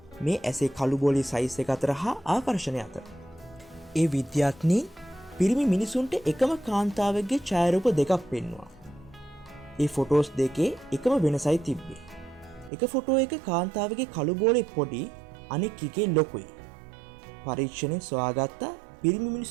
මේ ඇසේ කළු බෝලේ සයිස් එක අතර හා ආකර්ෂණය අතර. ඒ විද්‍යාඥයින් පිරිමි මිනිසුන්ට එකම කාන්තාවගේ ඡායාරූප දෙකක් පෙන්වුවා. ඒ ෆොටෝස් දෙකේ එකම වෙනසයි තිබ්බේ. එක ෆොටෝ එක කාන්තාවගේ කළු බෝලේ පොඩි, අනෙක් එකේ ලොකුයි. පරීක්ෂණයෙන් සොයාගත්ත පිරිමි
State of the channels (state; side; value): drops out; left; at 12.7 s